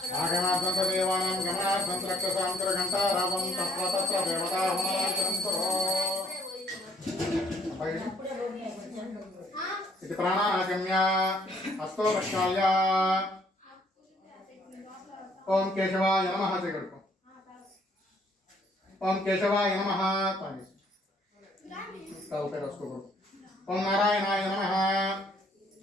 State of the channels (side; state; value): both; normal; correlation 0.64